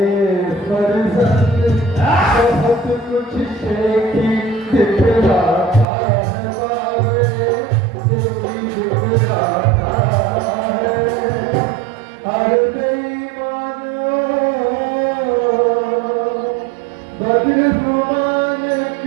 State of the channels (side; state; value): left; drops out; at 5.9 s